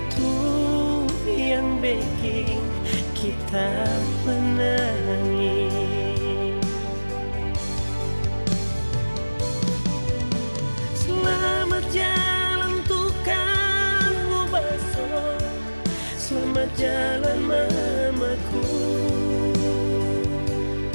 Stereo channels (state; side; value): inverted; both; correlation -1.00